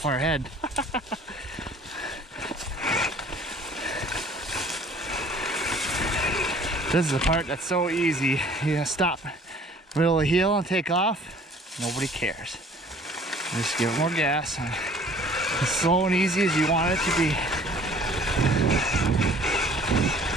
ahead. This is the part that's so easy. You stop middle of the hill and take off. Nobody cares. Just give it more gas. And as slow and easy as you want it to be.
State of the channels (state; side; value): normal; both; correlation 0.52